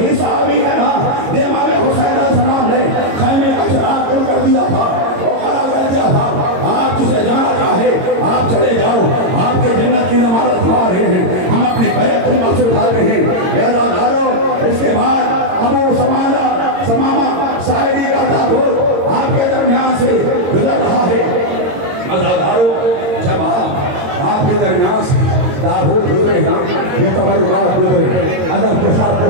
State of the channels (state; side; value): late; left; 22 ms